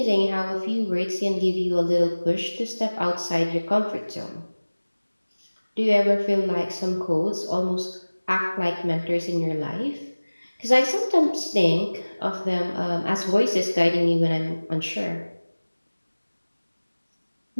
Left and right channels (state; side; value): inverted; both; correlation -1.00